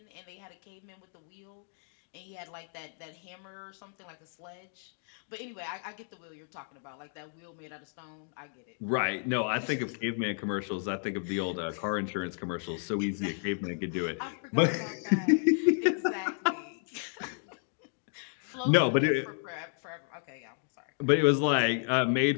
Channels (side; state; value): right; silent; 56 dB below the other